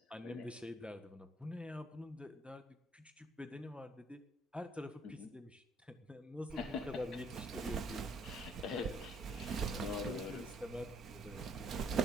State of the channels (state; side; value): normal; both; correlation 0.64